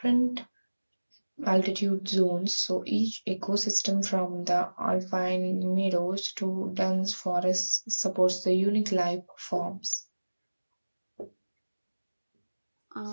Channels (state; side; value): inverted; both; correlation -1.00